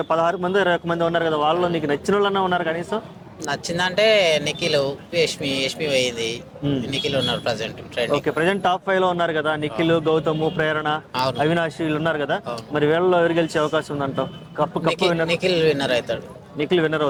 మంది 21 మంది ఉన్నారు కదా, వాళ్ళలో నీకు నచ్చిన వాళ్ళన్నా ఉన్నారు కనీసం? నచ్చిందంటే నిఖిల్, యష్మి పోయింది. నిఖిల్ ఉన్నారు present okay, trending. Present top 5 లో ఉన్నారు కదా, నిఖిల్, గౌతమ్, ప్రేరణ, అవును, అవినాష్ వీళ్ళు ఉన్నారు కదా. అవును. మరి వీళ్ళలో ఎవరు గెలిచే అవకాశం ఉందంటావు? కప్పు విన్నర్ నిఖిల్ విన్నర్ అవుతాడు. నిఖిల్ విన్నర్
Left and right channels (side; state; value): both; identical; correlation 1.00